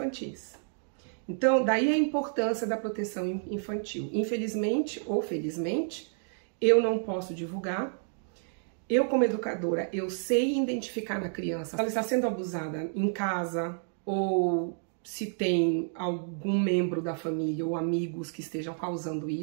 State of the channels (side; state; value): left; silent; digital silence